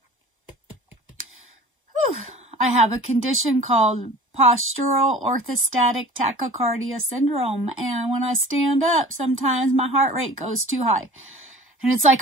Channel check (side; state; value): both; normal; correlation 0.43